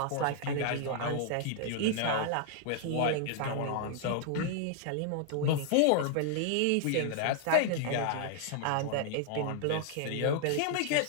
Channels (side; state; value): both; different; correlation 0.00